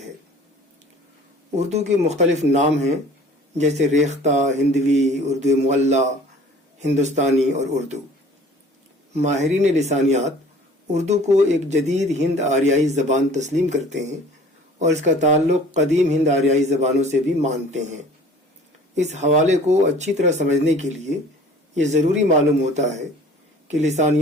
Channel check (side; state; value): both; normal; correlation 0.49